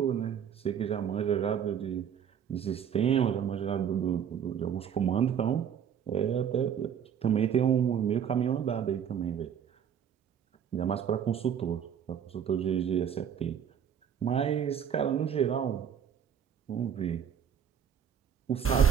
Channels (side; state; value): left; quieter; 8.3 dB